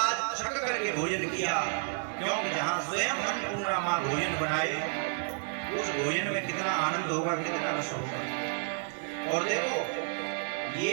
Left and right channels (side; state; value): left; silent; 57 dB below the other